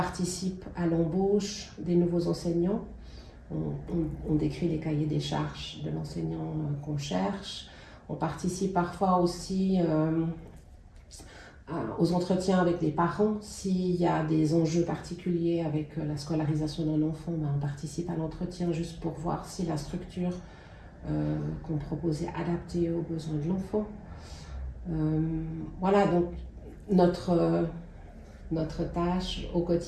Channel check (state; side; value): identical; both; correlation 1.00